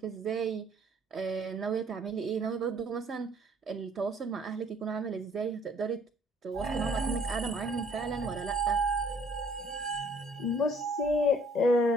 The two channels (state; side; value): normal; both; correlation 0.59